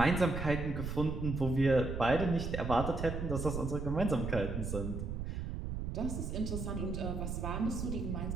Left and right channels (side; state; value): right; noise; rumble, 4 dB below the sound